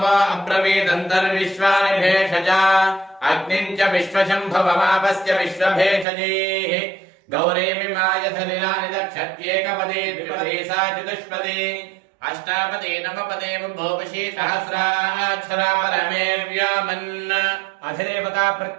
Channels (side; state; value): left; drops out; at 6.1 s